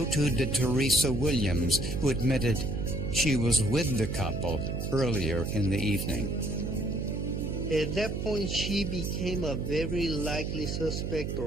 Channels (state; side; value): noise; right; hum, 3 dB below the sound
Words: too did Teresa Williams, who admitted she was with the couple earlier in the evening. At that point, she became a very likely suspect,